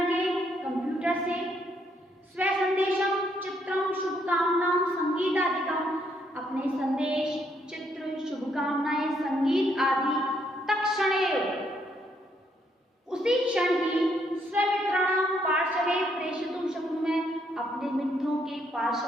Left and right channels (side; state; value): both; normal; correlation 0.72